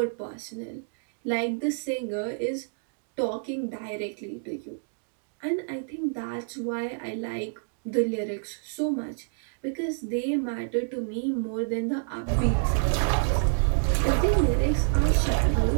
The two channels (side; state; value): left; silent; digital silence